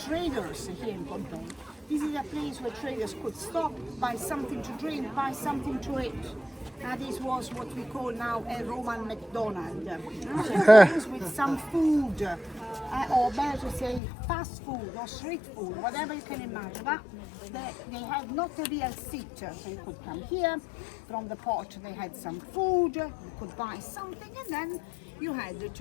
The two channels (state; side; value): drops out; right; at 14.0 s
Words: here in Pompeii. This is a place where traders could stop, buy something to drink, buy something to eat. This was what we call now a Roman McDonald's. A place with some food, or better to say fast food or street food, whatever you can imagine. But they had not a real seat, so you could come here from the pot. They had some food, you could buy something, and then you had